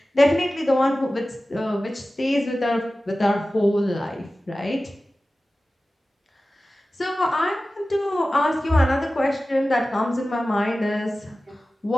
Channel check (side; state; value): both; normal; correlation 0.96